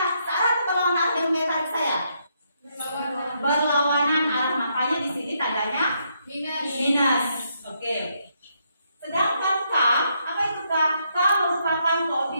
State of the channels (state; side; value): inverted; both; correlation -0.76